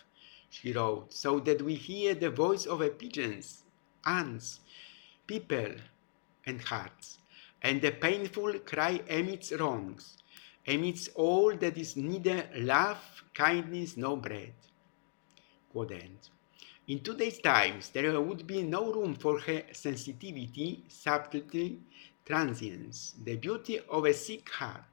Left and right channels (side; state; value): right; silent; digital silence